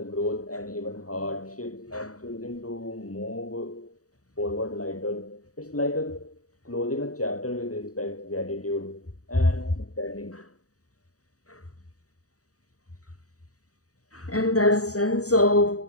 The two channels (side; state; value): right; late; 0.66 ms